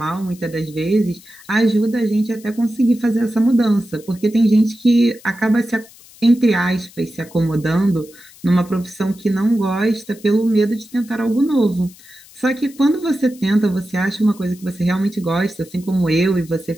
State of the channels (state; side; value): noise; left; hiss, 23 dB below the sound